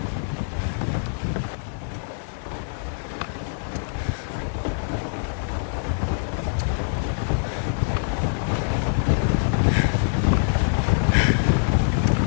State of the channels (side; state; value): right; silent; digital silence